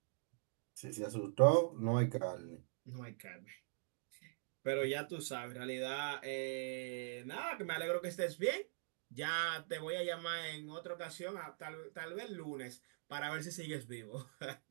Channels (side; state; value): left; silent; digital silence